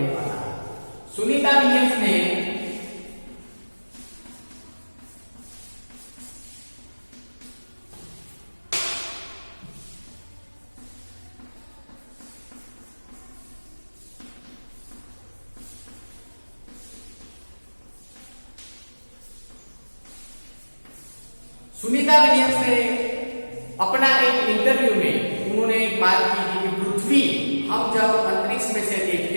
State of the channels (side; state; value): both; inverted; correlation -1.00